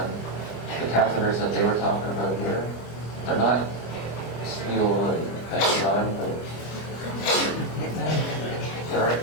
The catheters that they were talking about here, they're not steel, thank God, but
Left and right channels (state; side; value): late; right; 25 ms